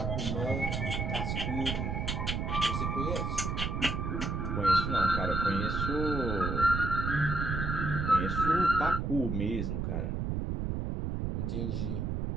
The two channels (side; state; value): right; noise; rumble, 1 dB below the sound